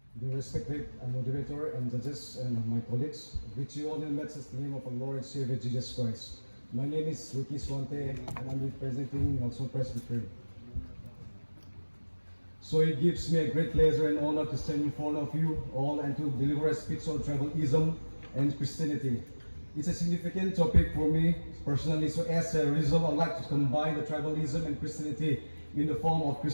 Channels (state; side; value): inverted; both; correlation -1.00